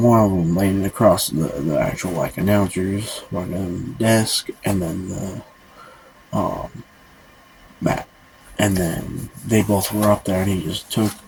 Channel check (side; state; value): both; identical; correlation 1.00